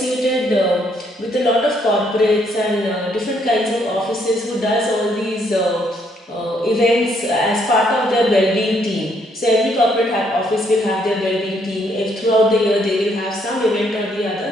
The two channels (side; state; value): both; normal; correlation 0.71